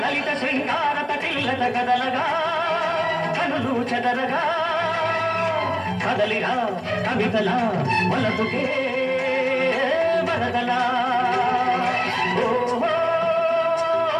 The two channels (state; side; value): identical; both; correlation 1.00